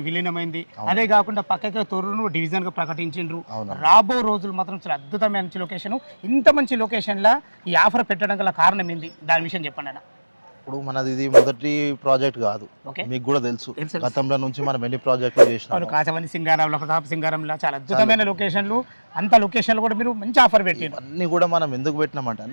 విలీనమైంది. అదే కాకుండా పక్కకి తొర్రూరు డివిజన్ గా ప్రకటించిండ్రు. రాబో రోజులు మాత్రం చాలా అద్భుతమైన మంచి లొకేషన్. ఇంత మంచి లొకేషన్ లా ఈ ఆఫర్ పెట్టడం గల కారణం ఏంది, దాని విషయం చెప్పండి అన్న. ఇప్పుడు మనది ఇది మొదటి ప్రాజెక్ట్ కాదు, మీకు కూడా తెలుసు. గతంలో నుంచి మనం ఎన్ని ప్రాజెక్టులు చేసినాం. కాచవల్లి సింగారంలో, ప్రతాప్ సింగారంలో చాలా అద్భుతమైన లొకేషన్లు. అంత లొకేషన్లు కూడా మీరు మంచి ఆఫర్ పెట్టారు. అన్ని కూడా మనం ఎందుకు పెట్టినామంటే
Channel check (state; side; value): inverted; both; correlation -1.00